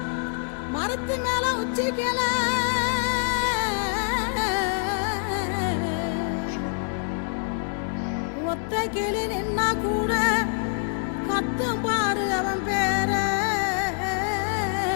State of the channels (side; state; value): right; silent; 61 dB below the other